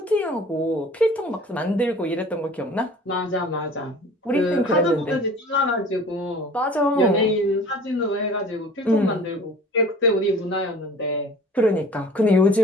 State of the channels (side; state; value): both; normal; correlation 0.45